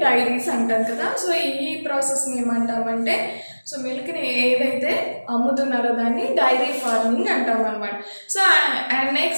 డైరీస్ అంటాం కదా. సో ఈ ప్రాసెస్ని ఏమంటామంటే, సో మిల్క్ని ఏదైతే అమ్ముతున్నారో దాన్ని డైరీ ఫార్మింగ్ అంటాం అనమాట. So and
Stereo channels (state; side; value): inverted; both; correlation -1.00